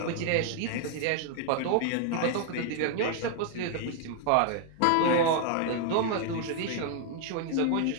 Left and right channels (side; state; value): both; different; correlation 0.00